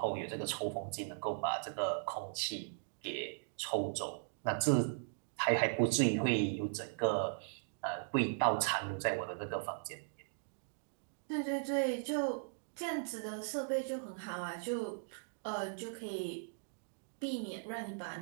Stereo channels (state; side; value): silent; left; digital silence